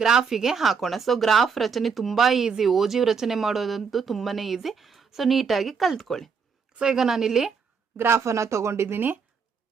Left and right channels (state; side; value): quieter; left; 5.8 dB